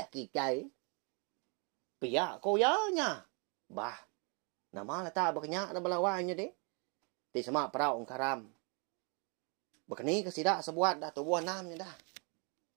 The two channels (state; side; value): quieter; left; 34.5 dB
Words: kita. Piak kau ya nya. Bah. Nama lata berkenyak na balawannya deh. Di semak perau karam. Bekeni ke sidak sebuat dah tubuh namnya dah.